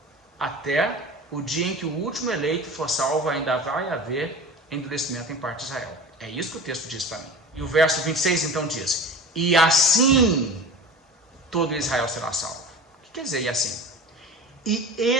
Até o dia em que o último eleito for salvo, ainda vai haver endurecimento em parte de Israel. É isso que o texto diz para mim. E o verso 26 então diz: e assim todo Israel será salvo. O que quer dizer e assim? E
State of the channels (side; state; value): both; normal; correlation 0.35